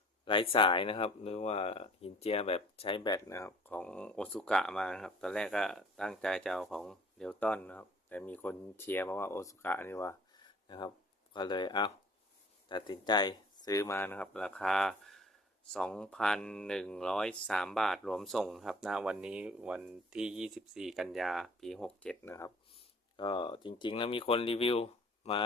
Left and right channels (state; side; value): normal; both; correlation 0.52